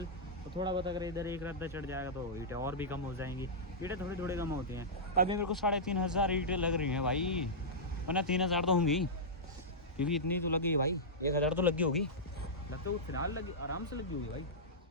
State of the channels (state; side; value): normal; both; correlation -0.12